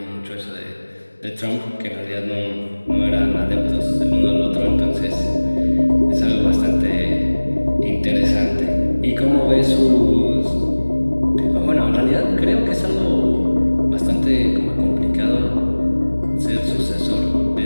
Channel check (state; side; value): inverted; both; correlation -1.00